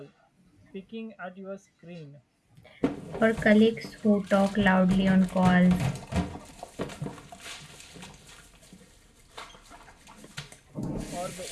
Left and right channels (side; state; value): both; identical; correlation 1.00